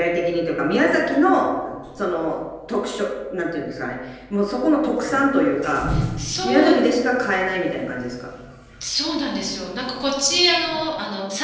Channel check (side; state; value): both; identical; correlation 1.00